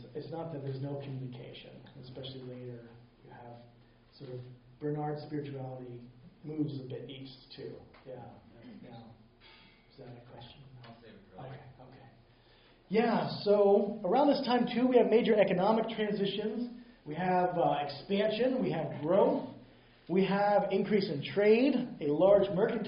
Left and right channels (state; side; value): identical; both; correlation 1.00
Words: not that there's no communication, especially later. You have sort of Bernard's spirituality moves a bit east too. Yeah. Is that a question? I'll save it for later. Okay. Yeah, so around this time too, we have major economic transitions. We have expansion. We have growth. We have increase in trade. A large